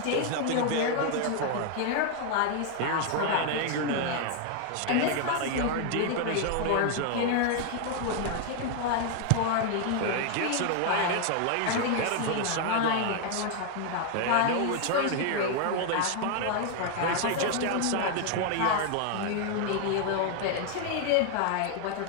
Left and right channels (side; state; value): both; different; correlation 0.00